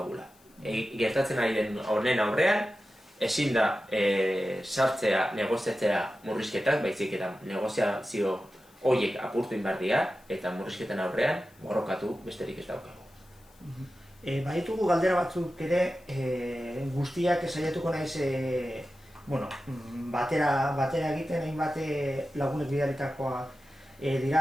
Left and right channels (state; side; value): noise; left; hiss, 30 dB below the sound